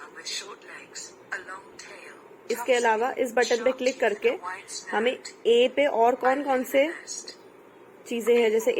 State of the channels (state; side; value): identical; both; correlation 1.00